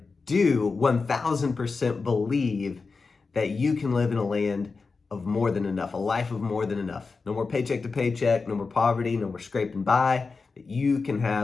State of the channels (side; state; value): right; quieter; 4.4 dB